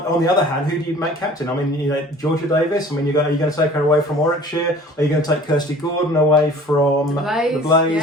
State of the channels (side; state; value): both; normal; correlation 0.47